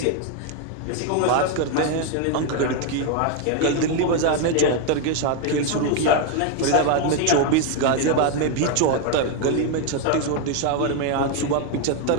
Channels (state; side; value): different; both; correlation 0.01